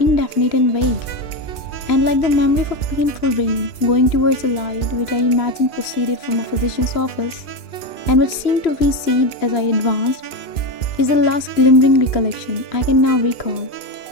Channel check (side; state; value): right; late; 2.5 ms